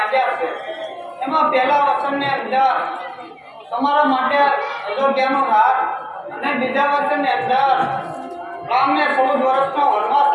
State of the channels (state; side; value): identical; both; correlation 1.00